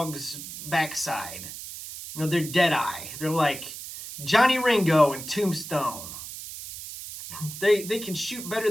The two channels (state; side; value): noise; right; hiss, 10 dB below the sound